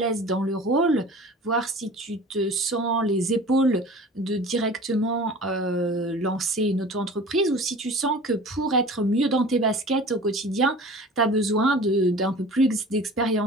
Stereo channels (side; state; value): both; normal; correlation 0.41